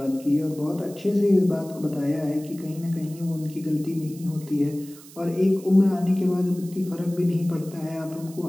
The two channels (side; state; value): right; noise; hiss, 20 dB below the sound